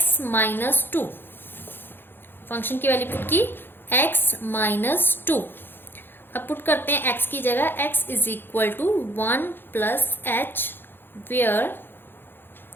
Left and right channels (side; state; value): right; late; 0.10 ms